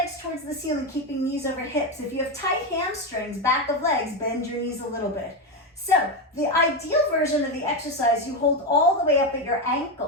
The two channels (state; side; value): normal; both; correlation 0.11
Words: towards the ceiling, keeping knees over hips. If you have tight hamstrings, back of legs, bend your knees a little bit. So the ideal version of the exercise, you hold all the way up at your